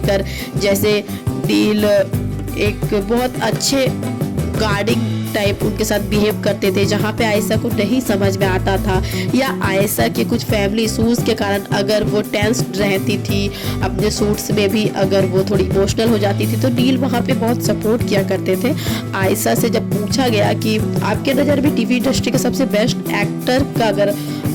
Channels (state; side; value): identical; both; correlation 1.00